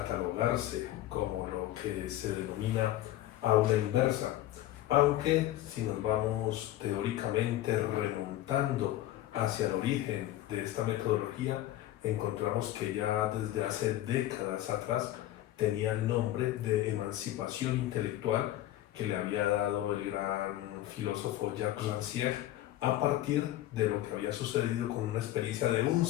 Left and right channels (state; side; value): quieter; right; 14.3 dB